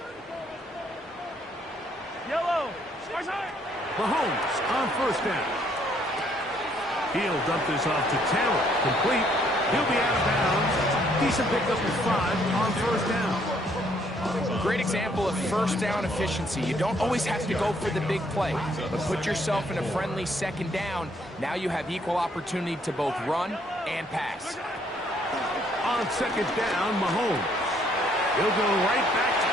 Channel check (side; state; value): both; normal; correlation 0.67